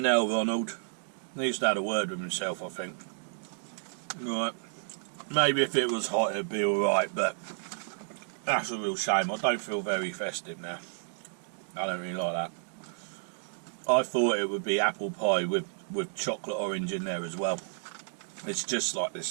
hell, Ronald. Needs to have a word with himself, I think. Right. Maybe if it was hot it'd be alright, but that's a real shame. I don't feel very festive now. I don't really like that. I thought it would be apple pie with chocolate orange in there as well. It's just like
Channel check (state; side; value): silent; left; digital silence